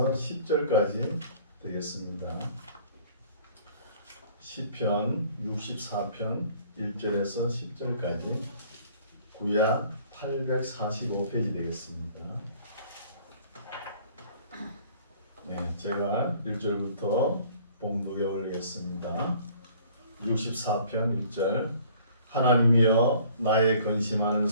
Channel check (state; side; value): inverted; both; correlation -0.54